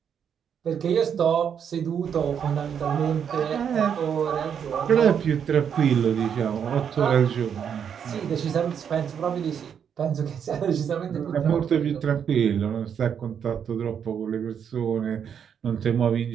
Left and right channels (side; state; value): left; quieter; 7.9 dB